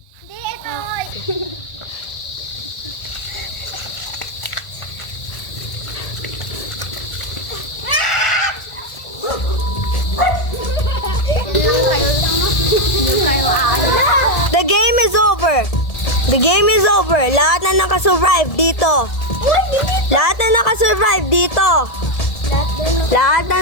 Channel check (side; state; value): right; late; 1.7 ms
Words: Hindi, ito. The game is over. The game is over. Lahat na nakasurvive dito. Lahat na nakasurvive dito. Lahat